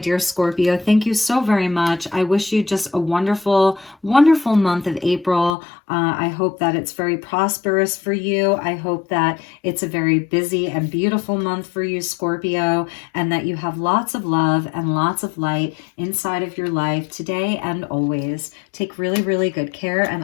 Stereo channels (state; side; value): drops out; right; at 5.6 s